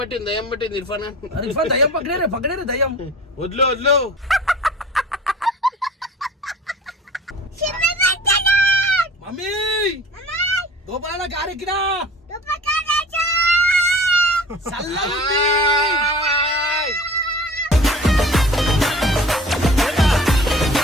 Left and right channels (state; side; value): normal; both; correlation 0.43